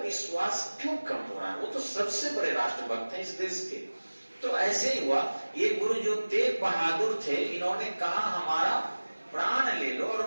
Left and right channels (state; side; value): inverted; both; correlation -1.00